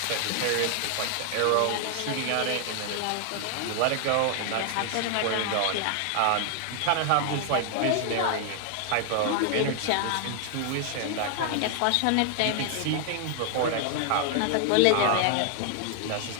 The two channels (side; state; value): both; different; correlation 0.00